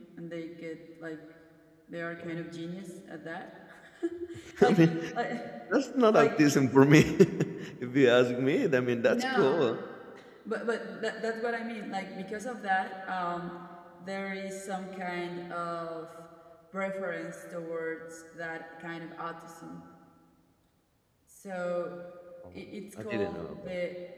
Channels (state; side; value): identical; both; correlation 1.00